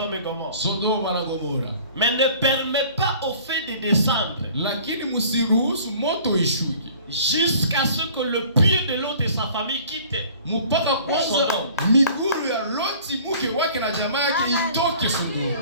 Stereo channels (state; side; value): inverted; both; correlation -0.49